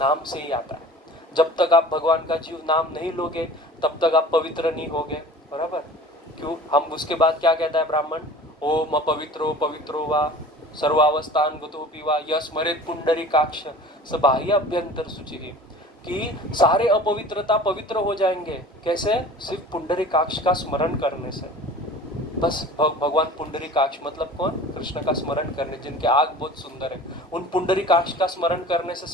से ही आता है। जब तक आप भगवान का जीव नाम नहीं लोगे तब तक आप पवित्र नहीं होगे। बराबर, क्यों? हम उसके बाद क्या कहता है ब्राह्मण? ओम पवित्रो वा सर्वावस्थान गतोपि वा यस्मरेत पुंडरीकाक्ष स बाह्य अभ्यंतर शुचि, कि सारे अपवित्रता पवित्र हो जाएंगे। कैसे? सिर्फ पुंडरीकाक्ष का स्मरण करने से। बस भगवान पुंडरीकाक्ष मतलब कौन? कृष्ण का स्मरण करने, जिनके आग बहुत सुंदर है, उन पुंडरीकाक्ष का स्मरण करने से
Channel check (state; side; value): normal; both; correlation 0.42